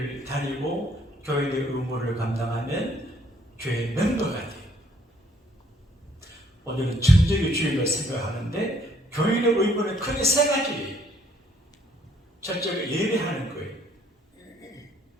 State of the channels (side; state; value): both; normal; correlation 0.65